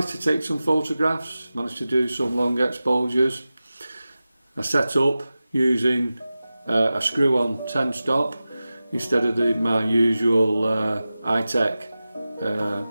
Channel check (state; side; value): inverted; both; correlation -0.95